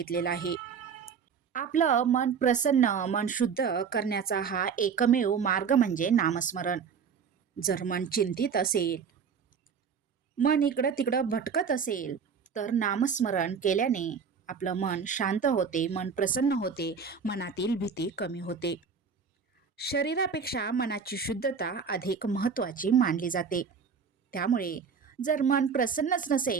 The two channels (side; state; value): left; quieter; 6.3 dB